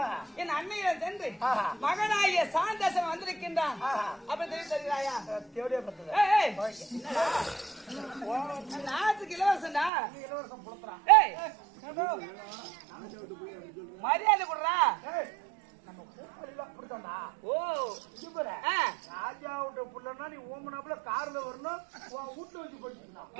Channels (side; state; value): left; drops out; at 9.9 s